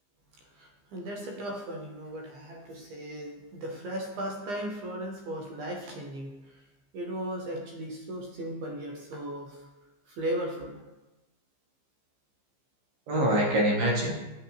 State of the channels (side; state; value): left; late; 15 ms